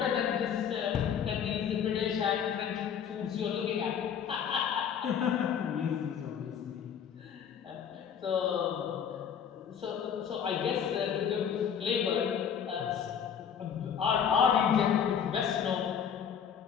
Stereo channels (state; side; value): quieter; right; 8.0 dB